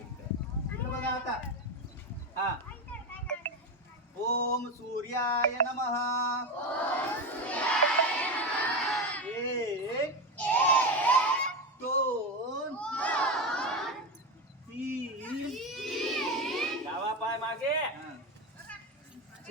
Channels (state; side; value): normal; both; correlation 0.16